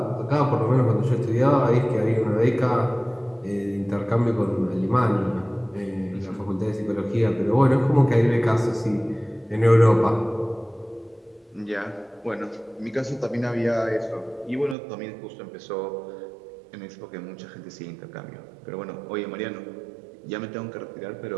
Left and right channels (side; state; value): left; drops out; at 14.8 s